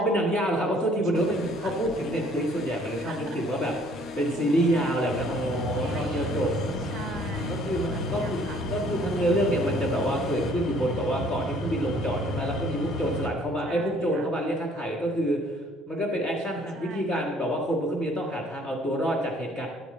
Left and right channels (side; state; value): both; normal; correlation 0.59